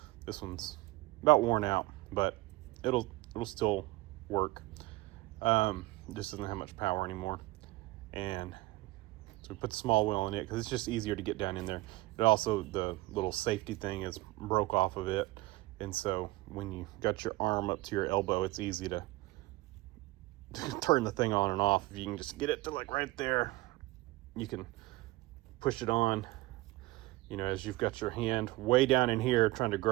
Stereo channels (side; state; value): left; quieter; 20.1 dB